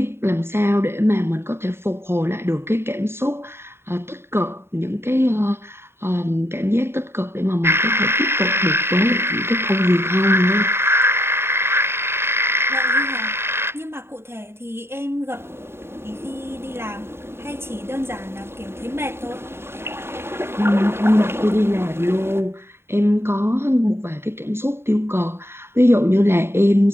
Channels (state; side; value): late; left; 0.12 ms